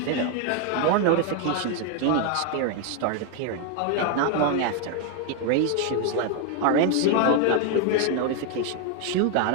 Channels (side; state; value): both; different; correlation 0.00